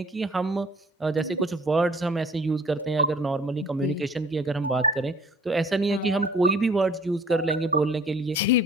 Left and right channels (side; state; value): both; normal; correlation 0.50